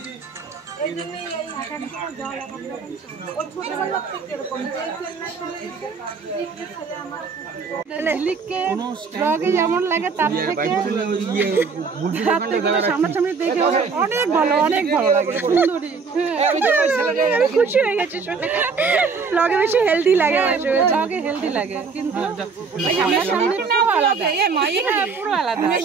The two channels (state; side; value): quieter; left; 5.0 dB